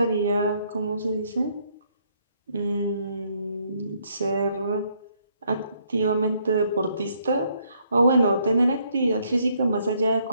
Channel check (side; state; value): both; inverted; correlation -0.70